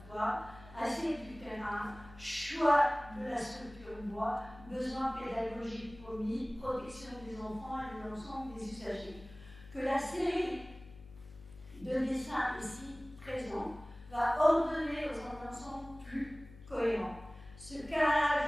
assiette du terrain, choix de la structure bois, besoins pédagogiques promis, protection des enfants et de l'ensemble des usagers. Que la série de dessins ici présents va ordonner dans un ensemble plus cohérent. Ce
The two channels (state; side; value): noise; left; hum, 19 dB below the sound